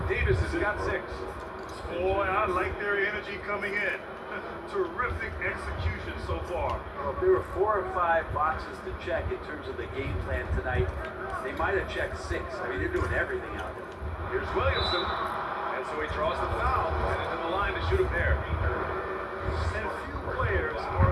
Davis has got 6. Boy, I like their energy coming in. Terrific execution so far. Well, if there were 4 or 5 boxes to check in terms of the game plan tonight, they might have checked 6. I mean, they're doing everything out there. Here's Williamson. And so he draws the foul. Headed to the line to shoot a pair. And few players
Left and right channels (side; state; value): both; identical; correlation 1.00